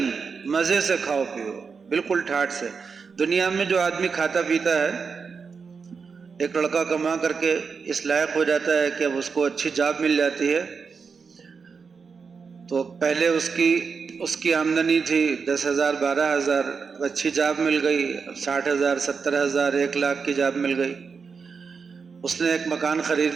مزے سے کھاؤ پیو، بالکل ٹھاٹ سے۔ دنیا میں جو آدمی کھاتا پیتا ہے، ایک لڑکا کما کر کے اس لائق ہو جاتا ہے کہ اب اس کو اچھی جاب مل جاتی ہے، تو پہلے اس کی آمدنی تھی 10,000 12,000، اچھی جاب مل گئی، 60,000 70,000 1,00,000 کی جاب مل گئی، اس نے ایک مکان خرید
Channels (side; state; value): left; quieter; 5.4 dB